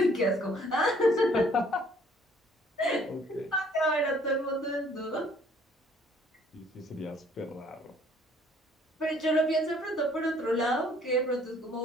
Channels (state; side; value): normal; both; correlation 0.59